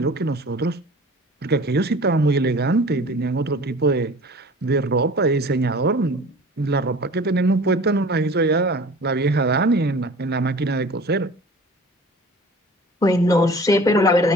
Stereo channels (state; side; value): normal; both; correlation 0.43